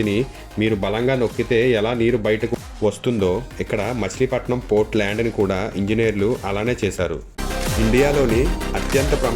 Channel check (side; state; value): both; identical; correlation 1.00